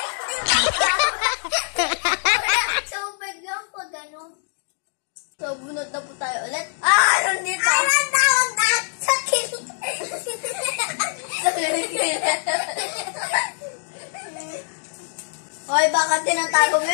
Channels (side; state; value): right; silent; 63 dB below the other